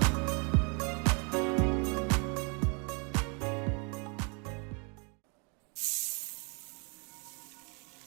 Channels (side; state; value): left; quieter; 34.2 dB